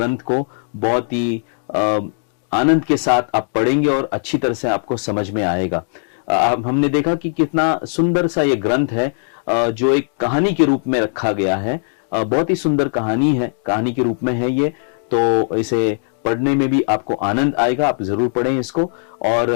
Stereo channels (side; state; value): right; silent; digital silence